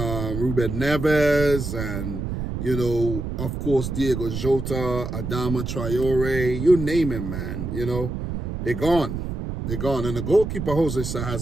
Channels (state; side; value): noise; right; rumble, 4 dB below the sound